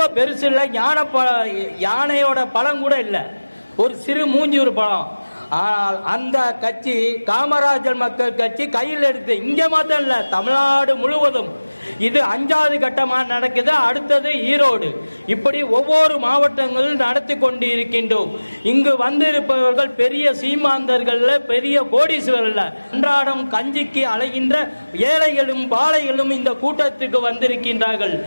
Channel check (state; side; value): inverted; both; correlation -1.00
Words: பெருசு இல்லை, யானையோட பழம் கூட இல்லை, ஒரு சிறு மூஞ்சூறு பழம். ஆனால் அந்த கட்சி காமராஜர் மக்கள் கட்சி கையில் எடுத்து இங்க மாத்திரம் இல்ல, தமிழ்நாடு முழுவதும் இது 5வது கட்டமா நடக்குது. அடுத்தது ஈரோடு, இப்படி ஒவ்வொரு மாவட்டங்களும் நடத்தி கொண்டு இருக்கின்றோம். இங்கு வந்திருப்பவர்கள் பெரிய சீமாந்தர்கள், பெரிய கோடீஸ்வரர்கள், அன்றாடம் கஞ்சிக்கு அலைகின்ற ஏழைகளும் பாலைகளும் இந்த கூட்டத்துக்கு வந்திருக்கின்றார்கள்.